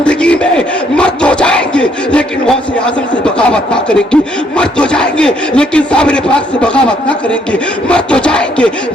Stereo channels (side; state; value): both; normal; correlation 0.69